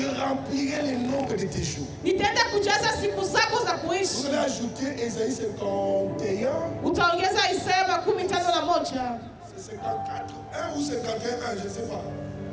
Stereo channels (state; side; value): identical; both; correlation 1.00